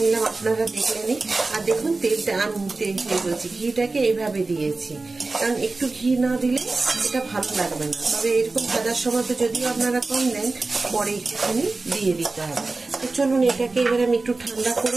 আপনারা দেখলেনই। আর দেখুন তেলটা আমি বলছি ঘিটাকে এইভাবে দিয়েছি, কারণ একটু ঘি না দিলে এটা ভালো লাগবে না। তবে এরকম ভাজার সময় তো যদিও আপনারা কম দেন, পরে একটুখানি দিয়ে দিতে হবে। তো চলুন এটাকে এবার আমি একটু ঠান্ডা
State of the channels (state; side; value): quieter; left; 3.6 dB